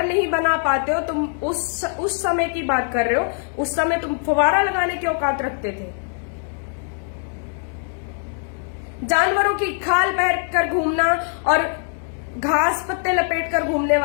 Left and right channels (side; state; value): right; silent; 64 dB below the other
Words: नहीं बना पाते हो। तुम उस समय की बात कर रहे हो, उस समय तुम फवारा लगाने की औकात रखते थे। जानवरों की खाल पहन कर घूमना और घास पत्ते लपेट कर घूमने